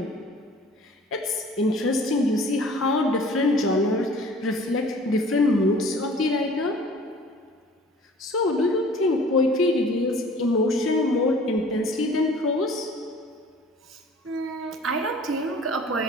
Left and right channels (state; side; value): normal; both; correlation 0.48